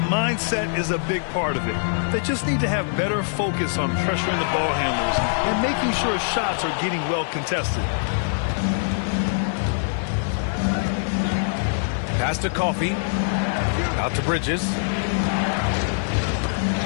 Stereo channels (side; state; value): right; silent; digital silence